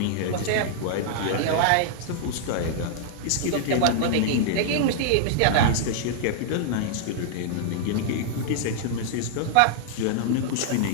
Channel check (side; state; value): both; different; correlation -0.01